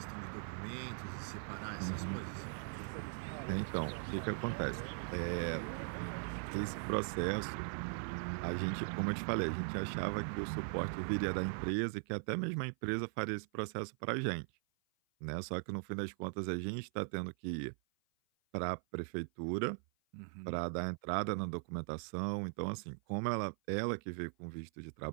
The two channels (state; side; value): silent; left; 51 dB below the other